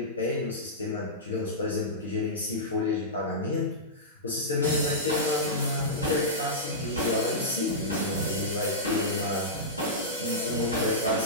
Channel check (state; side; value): normal; both; correlation -0.14